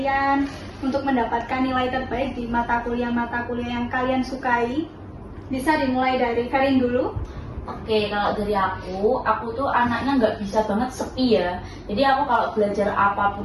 untuk mendapatkan nilai terbaik di mata kuliah yang kalian sukai. Bisa dimulai dari Ferin dulu. Oke, kalau dari aku tuh anaknya nggak bisa banget sepi ya. Jadi aku kalau belajar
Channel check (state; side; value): identical; both; correlation 1.00